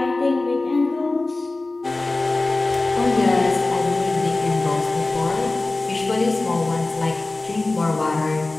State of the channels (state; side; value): quieter; right; 3.1 dB